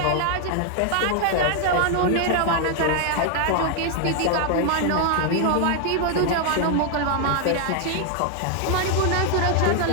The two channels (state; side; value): different; both; correlation 0.00